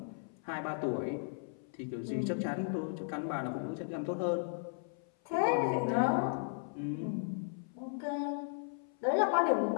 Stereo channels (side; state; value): right; silent; 54 dB below the other